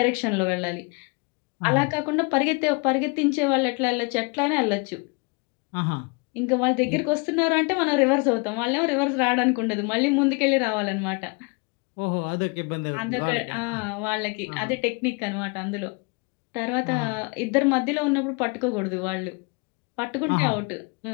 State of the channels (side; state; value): right; quieter; 31.3 dB